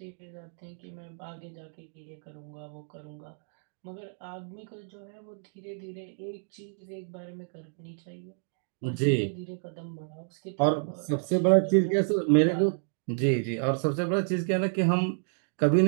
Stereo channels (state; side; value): silent; left; digital silence